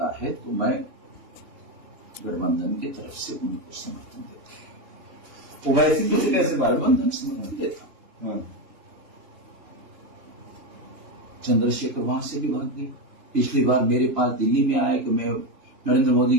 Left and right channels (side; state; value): left; late; 3.2 ms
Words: है तो मैं गठबंधन की तरफ से उनको समर्थन देता हूं। ओवैसी को कैसे गठबंधन समर्थन देता हूं। चंद्रशेखर वहां से भी भाग गए। पिछली बार मेरे पास दिल्ली में आया कि मैं नरेंद्र मोदी